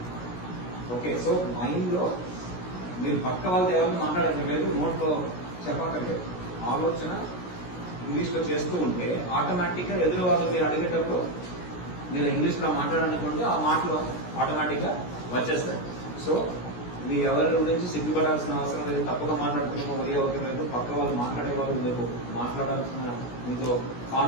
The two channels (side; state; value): right; late; 17 ms